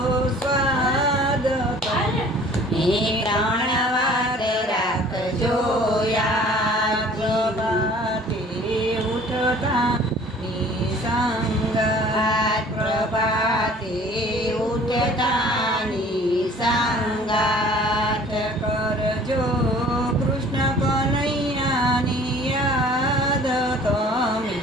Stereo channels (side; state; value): both; normal; correlation 0.50